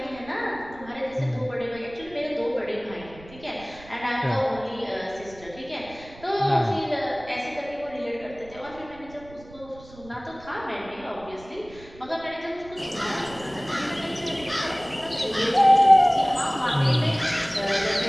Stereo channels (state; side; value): noise; right; rumble, 20 dB below the sound